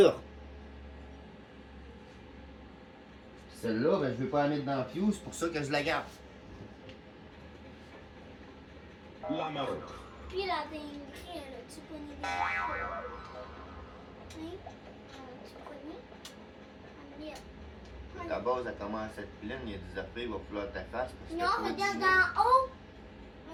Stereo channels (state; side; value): identical; both; correlation 1.00